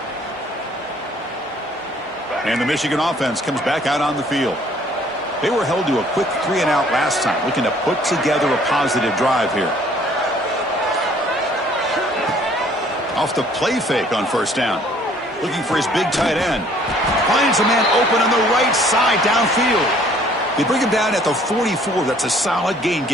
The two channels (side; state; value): both; normal; correlation 0.58